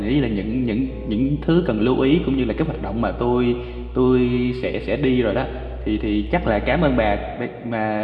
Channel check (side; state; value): both; identical; correlation 1.00